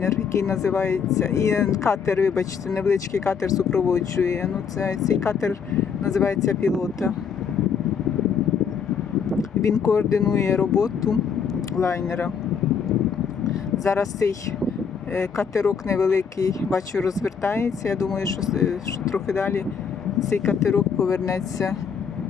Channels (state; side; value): quieter; right; 6.6 dB